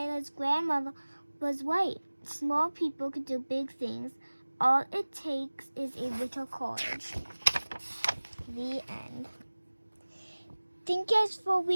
grandmother was right. Small people could do big things. All it takes is a little courage. The end. Thank you guys for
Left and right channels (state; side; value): inverted; both; correlation -1.00